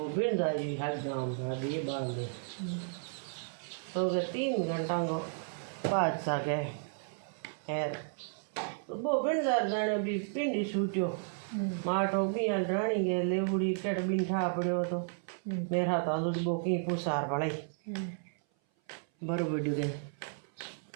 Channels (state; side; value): silent; left; 56 dB below the other